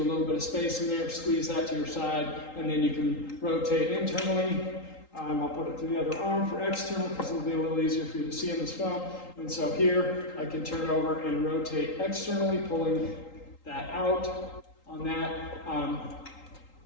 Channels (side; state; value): right; late; 3.8 ms